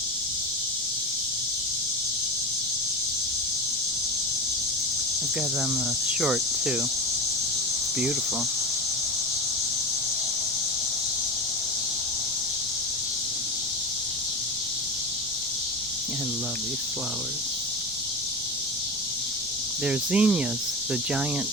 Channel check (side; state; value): left; noise; rumble, 26 dB below the sound